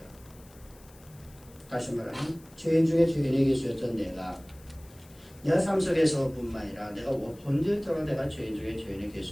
다시 말하면 죄인 중에 죄인이 계셨던 내가 삶 속에서뿐만 아니라 내가 본질적으로 내가 죄인 중에 죄인이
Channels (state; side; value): noise; left; hiss, 25 dB below the sound